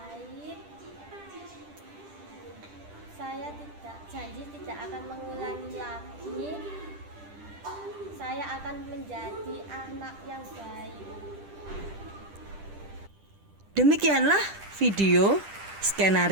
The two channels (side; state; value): left; late; 10 ms